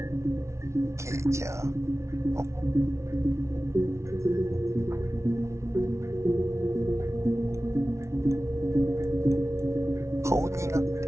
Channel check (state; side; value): late; left; 0.13 ms